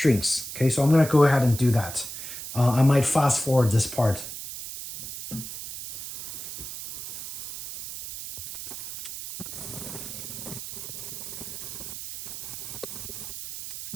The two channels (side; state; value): right; noise; hiss, 9 dB below the sound